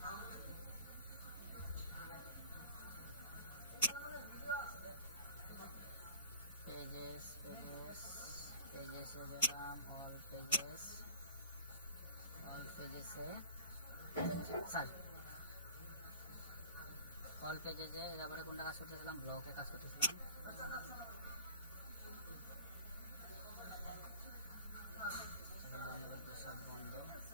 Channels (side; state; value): both; inverted; correlation -0.41